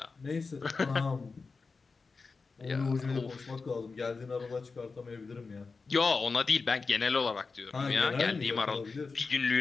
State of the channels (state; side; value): quieter; right; 4.4 dB